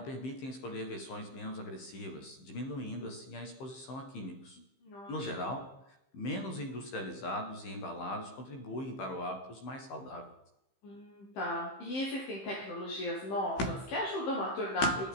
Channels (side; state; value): right; late; 15 ms